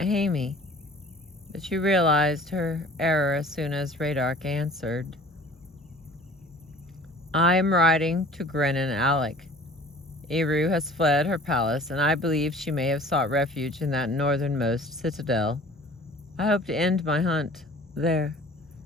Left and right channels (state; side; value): normal; both; correlation 0.47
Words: but she realized her error as soon as Radark answered. I am riding to Grennan Alec. Eru has fled her palace, and I believe she may have sought refuge in that northernmost citadel. I hope to end my hunt there.